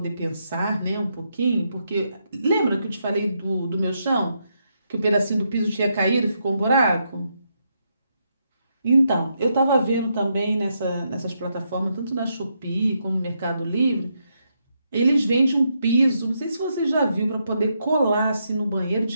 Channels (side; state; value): both; inverted; correlation -0.80